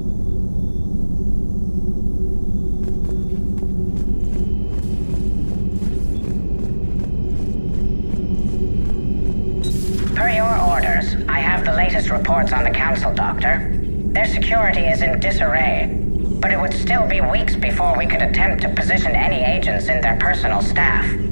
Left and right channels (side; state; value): both; inverted; correlation -1.00